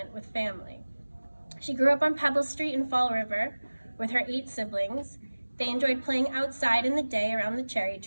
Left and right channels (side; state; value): both; inverted; correlation -1.00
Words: with family. She grew up on Pebble Street in Fall River with her 8 siblings. They enjoyed playing outside in the day around the cherry